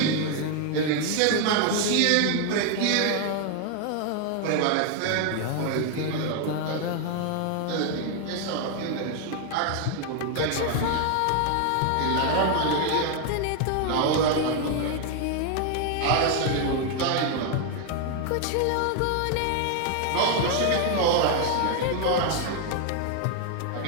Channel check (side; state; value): both; different; correlation 0.01